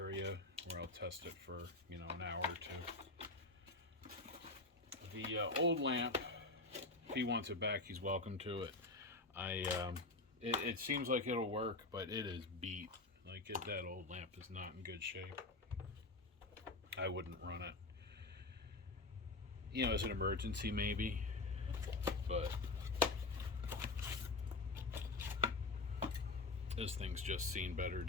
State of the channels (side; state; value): right; quieter; 3.3 dB